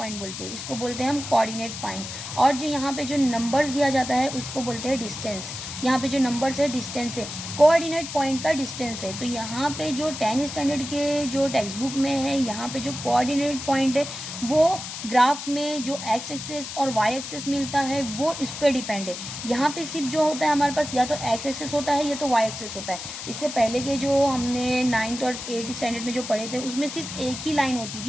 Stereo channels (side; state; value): left; noise; hiss, 8 dB below the sound